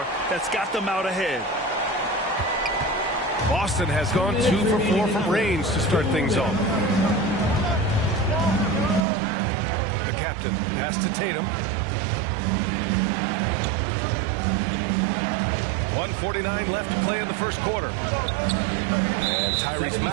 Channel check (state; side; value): drops out; left; at 9.1 s